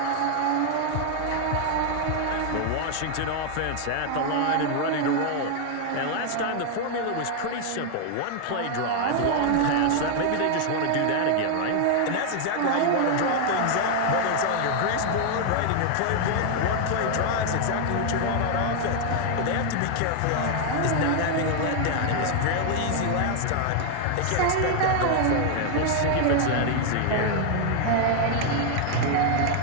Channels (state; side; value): different; both; correlation 0.00